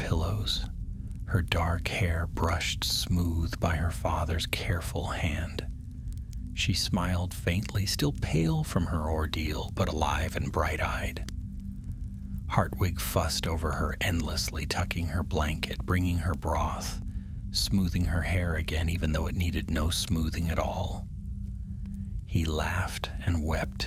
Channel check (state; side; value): identical; both; correlation 1.00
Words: her dark hair brushed smooth by her father's careful hand. She smiled faintly, still pale from her ordeal, but alive and bright-eyed. Hartwig fussed over her endlessly, tucking her blanket, bringing her broth, smoothing her hair again, even though it needed no smoothing at all. He laughed and